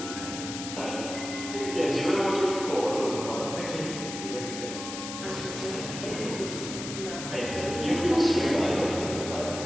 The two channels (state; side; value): noise; left; hiss, 8 dB below the sound